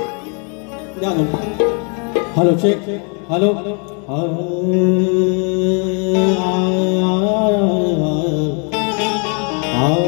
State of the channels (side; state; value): right; quieter; 38.3 dB